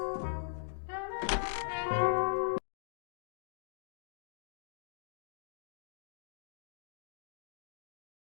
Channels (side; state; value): right; silent; digital silence